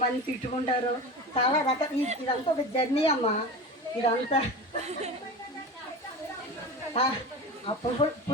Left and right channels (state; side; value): normal; both; correlation 0.30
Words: తిట్టుకుంటారు, చాలా రకాల. ఇదంతా ఒక జర్నీ అమ్మ. ఇదంతా